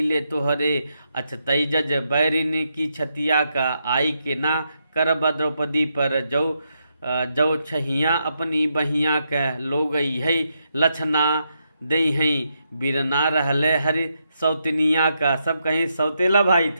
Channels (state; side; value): inverted; both; correlation -0.81